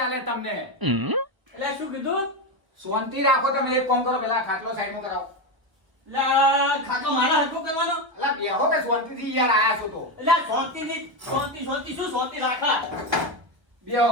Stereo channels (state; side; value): late; left; 1.1 ms